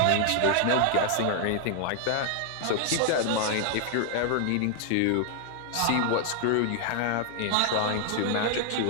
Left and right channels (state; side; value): different; both; correlation 0.00